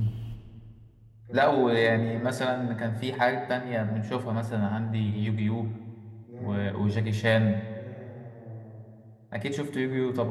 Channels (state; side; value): identical; both; correlation 1.00